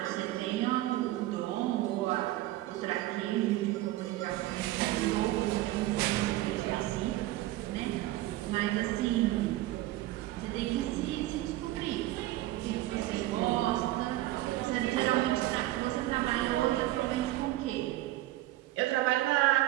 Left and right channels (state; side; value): quieter; left; 16.1 dB